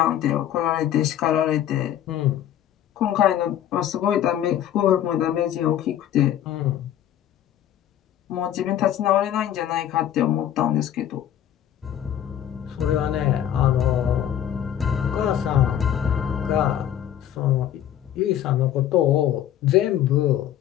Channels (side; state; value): right; quieter; 10.8 dB